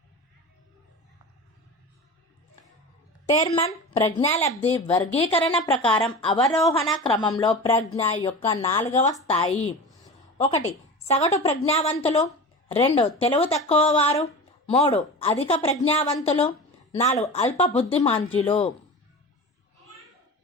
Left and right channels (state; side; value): normal; both; correlation 0.31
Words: టెర్మన్ ప్రజ్ఞాలబ్ధి వర్గీకరణ ప్రకారం అవరోహణ క్రమంలో ప్రజ్ఞ యొక్క 4వ స్థాయి. 1. సగటు ప్రజ్ఞావంతులు. 2. తెలివి తక్కువ వారు. 3. అధిక ప్రజ్ఞావంతులు. 4. అల్ప బుద్ధిమాంద్యులు.